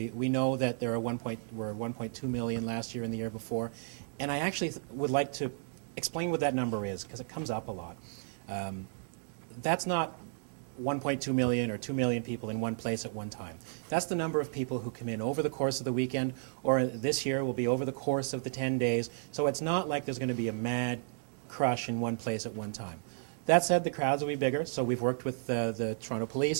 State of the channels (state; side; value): silent; left; digital silence